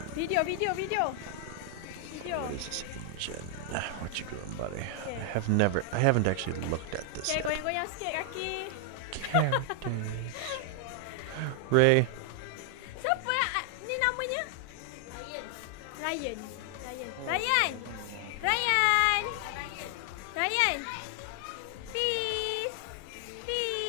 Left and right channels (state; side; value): different; both; correlation 0.00